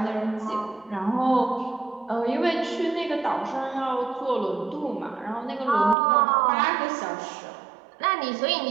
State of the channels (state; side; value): drops out; left; at 6.0 s